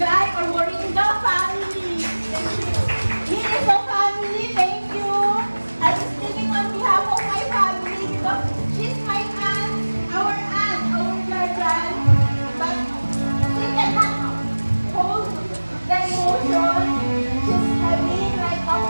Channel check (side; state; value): both; inverted; correlation -1.00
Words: or Moringa family. Thank you. Miniso family, thank you. I'm speaking on behalf of my family because she's my aunt, our guardian. But she cannot hold the emotion. She's having right now